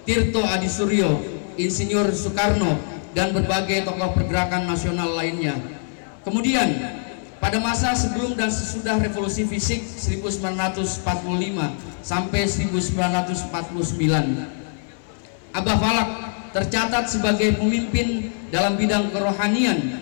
Tirto Adi Suryo, Insinyur Soekarno, dan berbagai tokoh pergerakan nasional lainnya. Kemudian pada masa sebelum dan sesudah revolusi fisik 1945 sampai 1949, Abah Falak tercatat sebagai pemimpin dalam bidang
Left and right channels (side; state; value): right; silent; digital silence